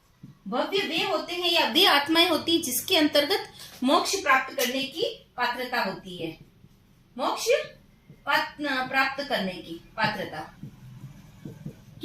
भव्य वे होते हैं या वे आत्माएं होती हैं जिसके अंतर्गत मोक्ष प्राप्त करने की पात्रता होती है। मोक्ष प्राप्त करने की पात्रता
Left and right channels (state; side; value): identical; both; correlation 1.00